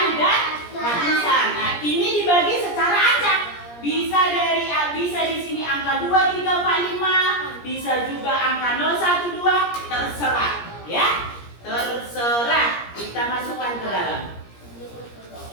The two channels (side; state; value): right; late; 17 ms